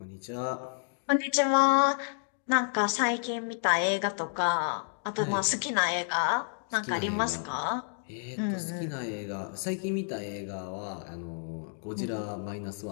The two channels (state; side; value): silent; right; digital silence